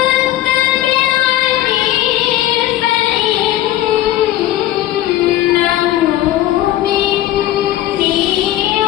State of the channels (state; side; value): quieter; right; 13.9 dB